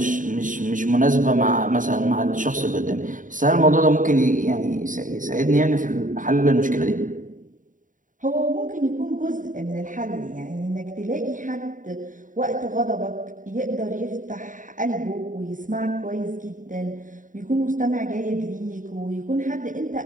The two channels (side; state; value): left; late; 0.38 ms